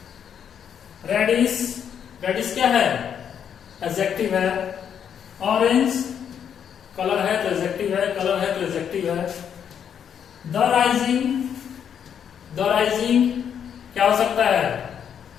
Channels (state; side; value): quieter; right; 8.3 dB